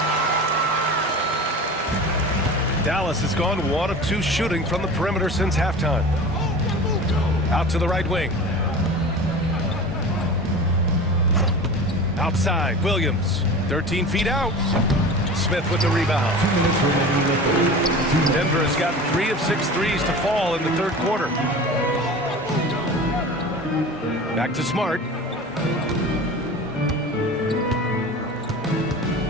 Dallas has gone 1 of 2 shooting from the perimeter since halftime. Out to the right wing. Outside, Williams. 13 feet out. Smith with the rebound. Denver has gotten 3 of 6 threes to fall in the 3rd quarter. Back to Smart.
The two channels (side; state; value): both; normal; correlation 0.35